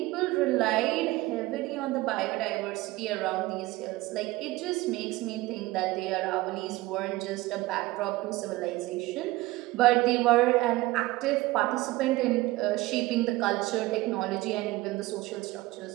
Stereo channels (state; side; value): quieter; left; 19.1 dB